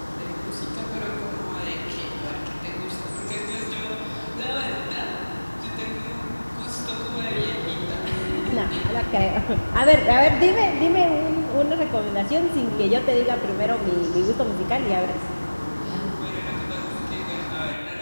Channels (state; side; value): inverted; both; correlation -1.00